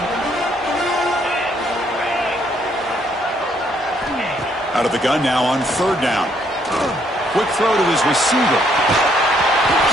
Out of the gun now on third down. Quick throw to his receiver.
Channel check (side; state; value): both; normal; correlation 0.69